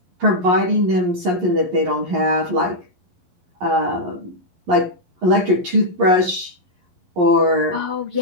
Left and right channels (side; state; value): left; late; 11 ms